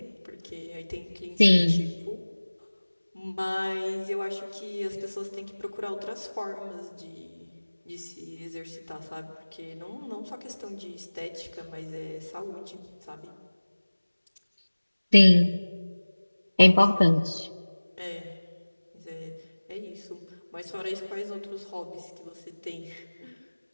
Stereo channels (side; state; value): both; inverted; correlation -1.00